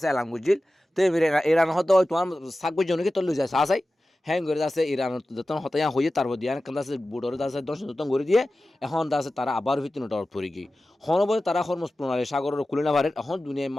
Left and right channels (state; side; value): normal; both; correlation 0.95